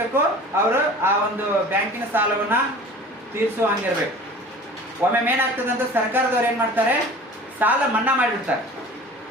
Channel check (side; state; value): both; normal; correlation 0.42